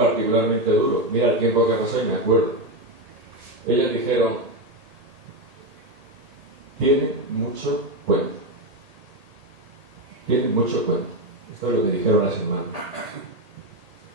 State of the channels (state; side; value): late; left; 1.8 ms